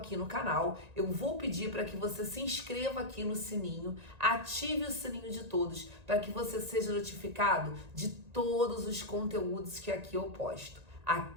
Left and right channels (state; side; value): late; left; 1.9 ms